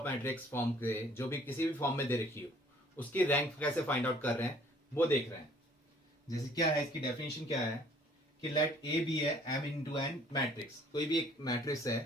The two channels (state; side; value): normal; both; correlation 0.58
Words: मैट्रिक्स फॉर्म के जो भी किसी भी फॉर्म में दे रखी हो, उसकी रैंक कैसे फाइंड आउट कर रहे हैं वो देख रहे हैं। जैसे क्या है, इसकी डेफिनेशन क्या है कि लेट ए बी है m इंटू एन मैट्रिक्स। कोई भी एक मैट्रिक्स है